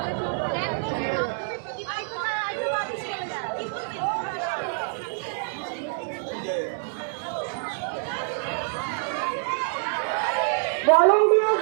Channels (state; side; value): silent; left; 61 dB below the other